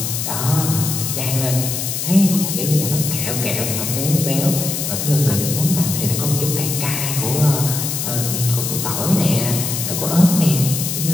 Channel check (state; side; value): noise; left; hiss, 3 dB below the sound